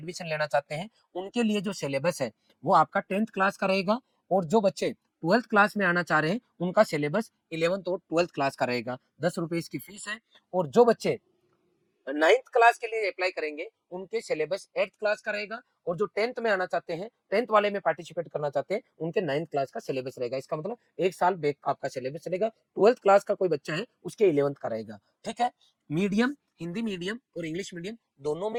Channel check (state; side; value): identical; both; correlation 1.00